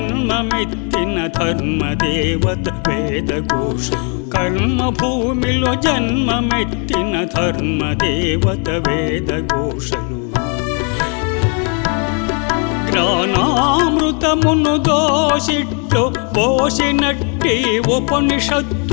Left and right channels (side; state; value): right; quieter; 38.2 dB